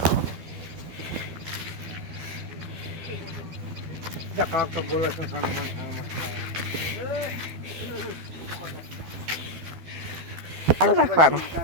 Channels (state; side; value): late; left; 12 ms